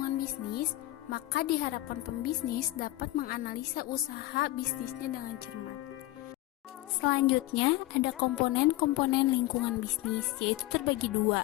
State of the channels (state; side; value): quieter; right; 17.6 dB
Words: bisnis, maka diharapkan pembisnis dapat menganalisa usaha bisnisnya dengan cermat. Selanjutnya, ada komponen-komponen lingkungan bisnis, yaitu terbagi dua.